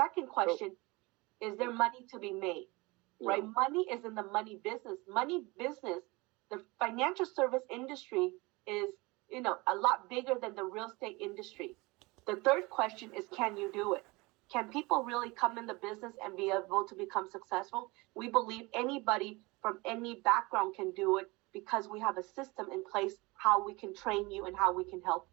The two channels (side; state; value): left; quieter; 24.2 dB